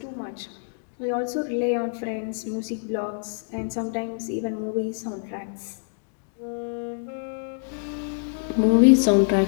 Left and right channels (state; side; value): silent; right; digital silence